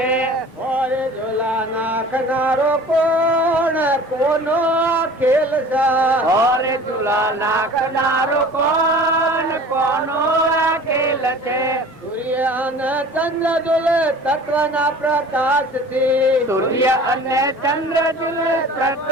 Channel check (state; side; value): normal; both; correlation 0.43